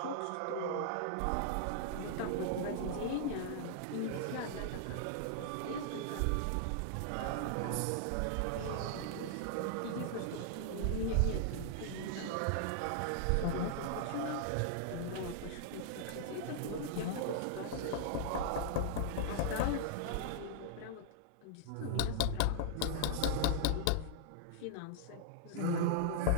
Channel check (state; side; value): different; both; correlation -0.01